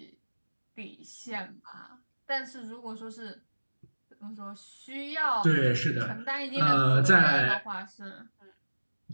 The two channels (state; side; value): inverted; both; correlation -1.00